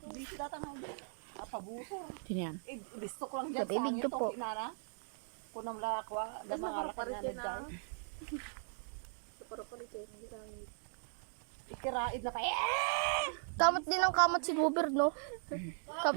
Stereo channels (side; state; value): left; silent; digital silence